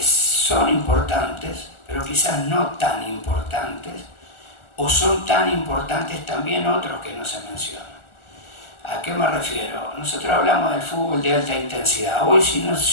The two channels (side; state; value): right; late; 1.4 ms